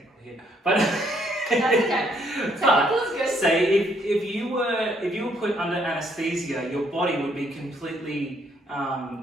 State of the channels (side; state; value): both; normal; correlation 0.69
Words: here, but That's okay. Technical is good. say if you were put under anesthesia, your body would be completely